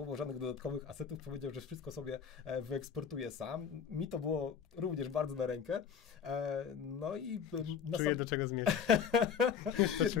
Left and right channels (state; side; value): quieter; right; 7.2 dB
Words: żadnych dodatkowych asetów, powiedział, że wszystko sobie wyeksportuje sam. Mi to było również bardzo na rękę. No i... Czuję, do czego zmierzam.